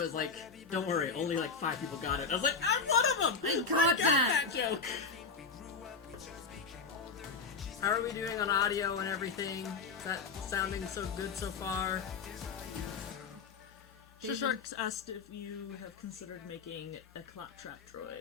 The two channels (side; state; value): right; quieter; 5.0 dB